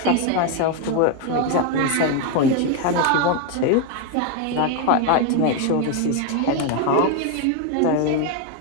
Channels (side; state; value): both; different; correlation 0.01